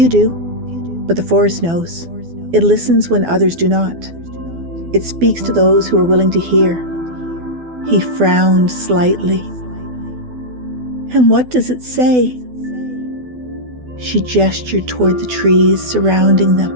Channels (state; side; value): late; left; 12 ms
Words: do, but the forest knows. It listens when others do not. It speaks to those who are willing to hear. He frowned slightly. "And what does it say?" She gestured toward the trees surrounding them.